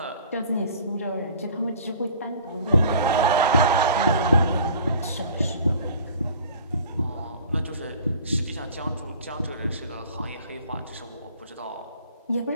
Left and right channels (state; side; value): inverted; both; correlation -0.48